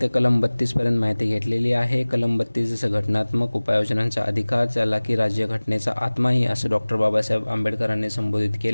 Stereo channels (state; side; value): inverted; both; correlation -1.00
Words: ते कलम 32 पर्यंत माहिती घेतलेली आहे। कलम 32 जसं घटनात्मक उपाययोजनांचा अधिकार, ज्याला की राज्यघटनेचा आत्माही असं डॉक्टर बाबासाहेब आंबेडकरांनी संबोधित